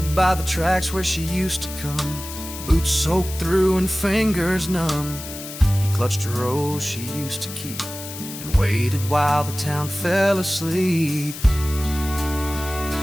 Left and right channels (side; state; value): left; noise; hiss, 11 dB below the sound